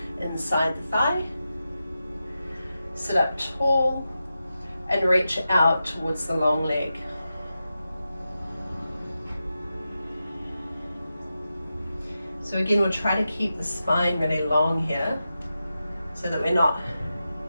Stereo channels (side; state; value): both; inverted; correlation -0.90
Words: inside the thigh. Sit up tall and reach out towards the long leg. So again, we'll try to keep the spine really long here so that we're not